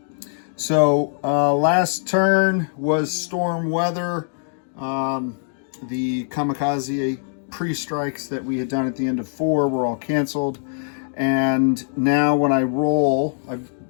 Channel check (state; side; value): silent; right; digital silence